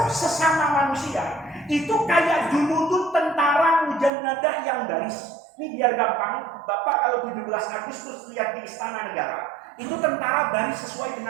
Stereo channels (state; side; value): drops out; left; at 4.1 s